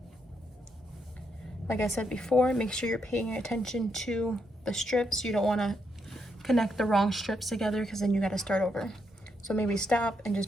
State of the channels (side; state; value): both; normal; correlation 0.79